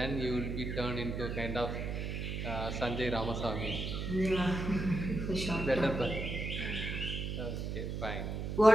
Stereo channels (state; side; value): noise; right; hum, 3 dB below the sound